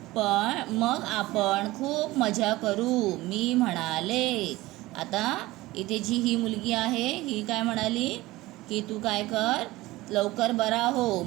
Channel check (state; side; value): quieter; left; 18.8 dB